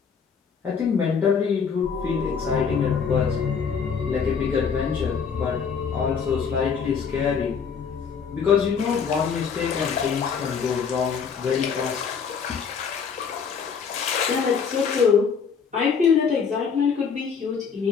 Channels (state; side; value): quieter; right; 6.3 dB